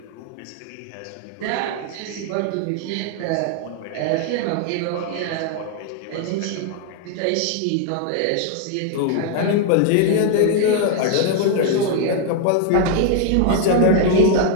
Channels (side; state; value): both; different; correlation 0.00